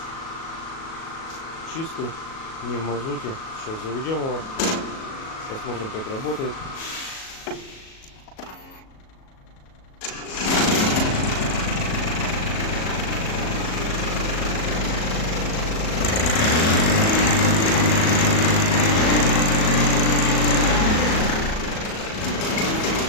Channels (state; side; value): late; right; 37 ms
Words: Чистый, не в мазуте. Сейчас заведем его, посмотрим, как работает.